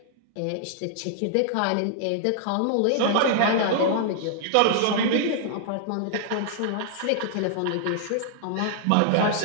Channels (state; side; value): different; both; correlation -0.01